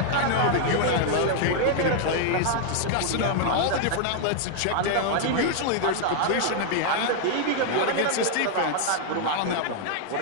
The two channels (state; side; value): different; both; correlation 0.00